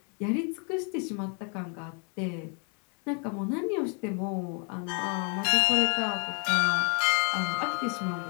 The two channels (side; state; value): right; quieter; 38.0 dB